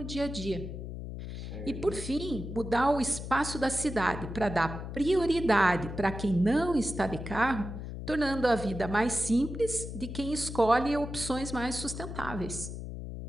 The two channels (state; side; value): noise; left; hum, 8 dB below the sound